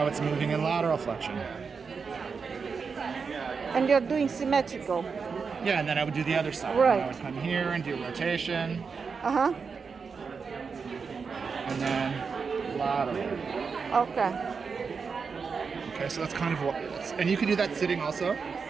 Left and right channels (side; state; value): left; quieter; 5.4 dB